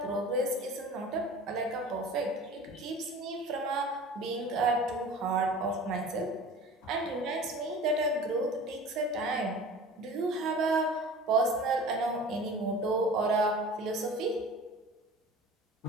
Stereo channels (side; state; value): both; normal; correlation 0.40